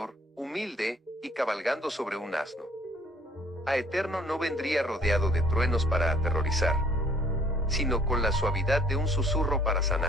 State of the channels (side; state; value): both; normal; correlation 0.58